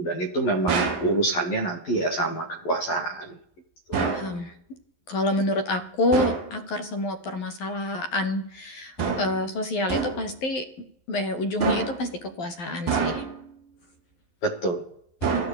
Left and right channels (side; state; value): right; late; 11 ms